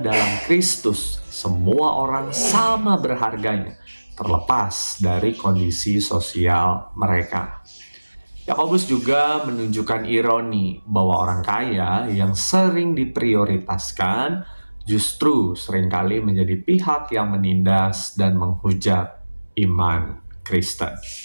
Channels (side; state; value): both; inverted; correlation -1.00